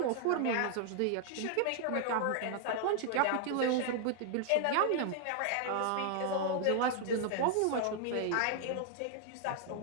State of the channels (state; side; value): different; both; correlation 0.00